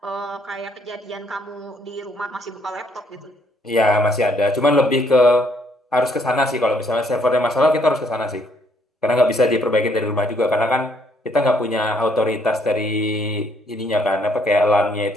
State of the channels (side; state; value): both; normal; correlation 0.68